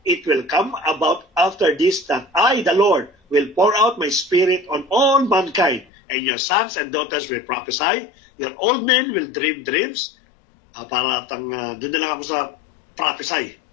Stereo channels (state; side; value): drops out; right; at 5.9 s